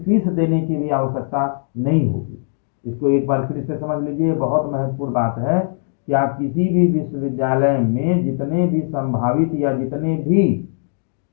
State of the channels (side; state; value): right; silent; digital silence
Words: देने की भी आवश्यकता नहीं होगी। इसको एक बार फिर से समझ लीजिए, बहुत महत्वपूर्ण बात है कि आप किसी भी विश्वविद्यालय में जितने भी संभावित या जितने भी